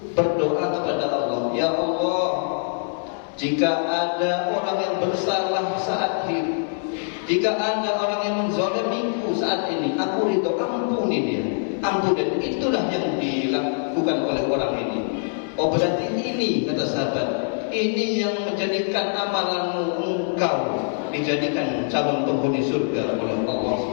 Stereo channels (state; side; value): silent; right; digital silence